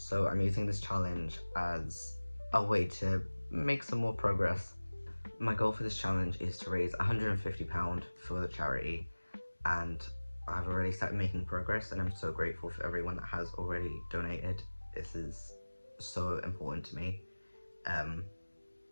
I'm using this challenge as a way to make some more progress. My goal for this challenge is to raise £150 for the charity, and I've already started making progress and I'm so grateful for everyone that has already donated. This is so important to me.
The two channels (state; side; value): inverted; both; correlation -1.00